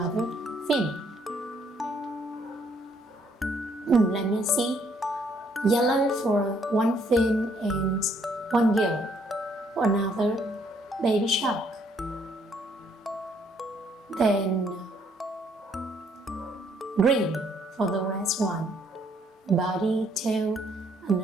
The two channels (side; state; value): both; normal; correlation 0.67